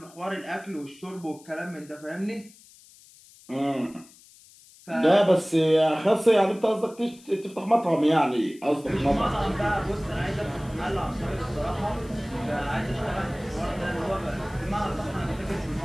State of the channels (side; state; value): left; noise; hiss, 24 dB below the sound